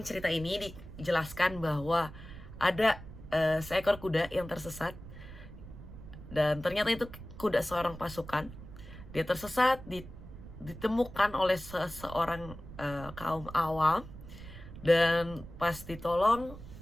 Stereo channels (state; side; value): noise; right; rumble, 14 dB below the sound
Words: cerita ini dijelaskan bahwa ada seekor kuda yang tersesat dan ternyata itu kuda seorang pasukan. Dia tersesat, ditemukan oleh seseorang kaum awam, dan pas ditolong,